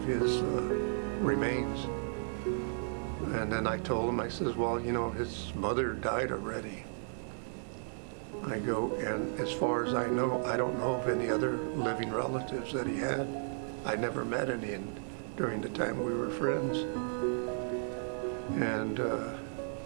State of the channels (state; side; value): silent; left; digital silence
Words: his remains. And then I told him, I says, "Well, his mother died already." I go, and as far as I know, I don't know of any other living relatives that he had. I never met any during the time we were friends. And